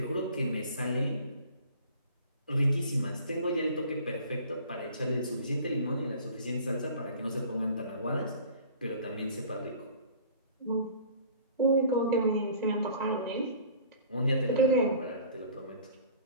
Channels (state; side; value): inverted; both; correlation -0.47